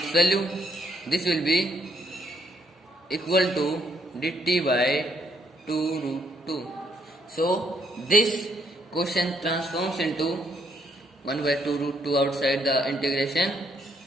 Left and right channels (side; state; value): both; normal; correlation 0.72